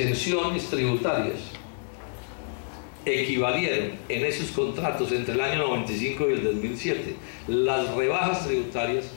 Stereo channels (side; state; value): right; silent; digital silence